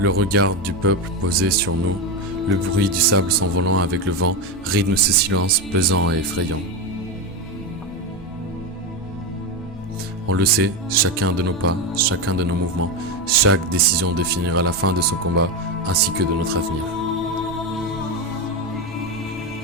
regard du peuple posé sur nous, le bruit du sable s'envolant avec le vent rythme ce silence pesant et effrayant. On le sait, chacun de nos pas, chacun de nos mouvements, chaque décision définira la fin de ce combat ainsi que de notre avenir.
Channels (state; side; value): normal; both; correlation 0.13